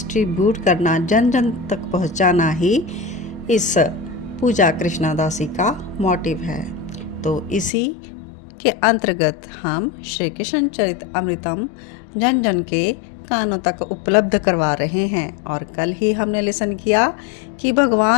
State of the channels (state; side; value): drops out; right; at 7.7 s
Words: करना, जन जन तक पहुंचाना ही इस पूजा कृष्णादासी का मोटिव है। तो इसी के अंतर्गत हम श्री कृष्ण चरित अमृतम जन जन के कानों तक उपलब्ध करवा रहे हैं। और कल ही हमने लिसन किया कि